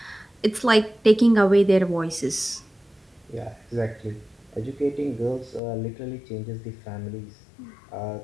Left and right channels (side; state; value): right; drops out; at 5.6 s